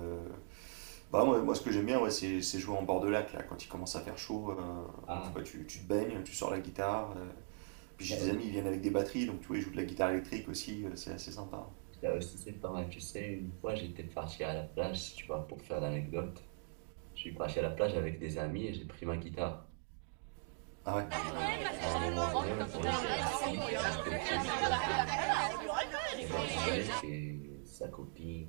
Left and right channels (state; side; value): silent; left; 51 dB below the other